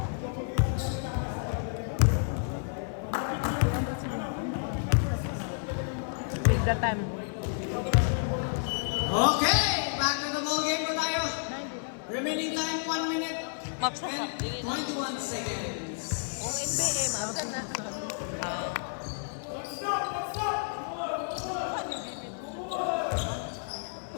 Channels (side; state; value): right; silent; digital silence